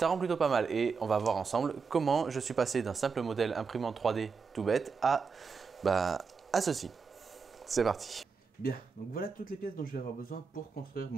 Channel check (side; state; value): left; quieter; 5.3 dB